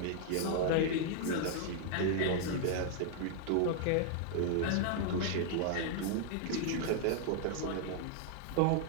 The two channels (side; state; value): both; different; correlation -0.01